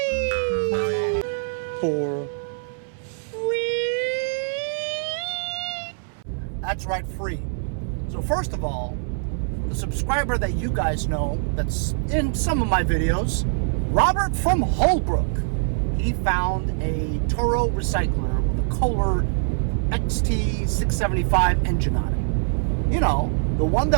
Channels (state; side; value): silent; left; 63 dB below the other